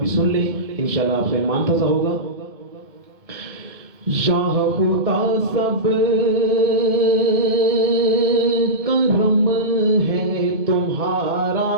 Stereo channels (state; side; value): late; left; 2.1 ms